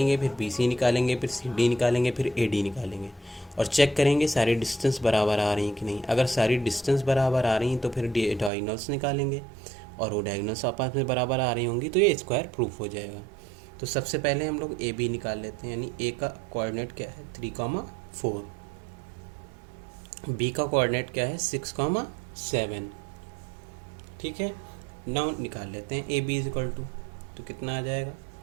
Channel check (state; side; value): drops out; left; at 8.5 s